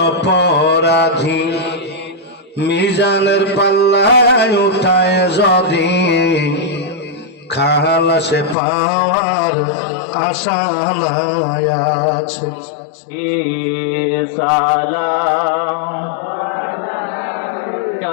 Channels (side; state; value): right; drops out; at 8.6 s